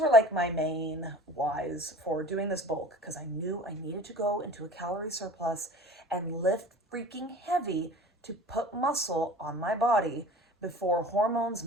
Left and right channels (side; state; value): both; normal; correlation 0.42